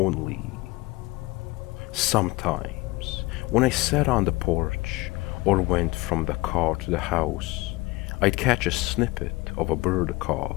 Sometimes, when I sat on the porch or went from the car to the house, I'd catch a snippet of a bird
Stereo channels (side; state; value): right; quieter; 21.7 dB